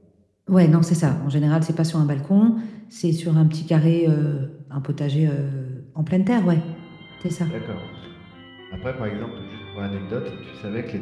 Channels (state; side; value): identical; both; correlation 1.00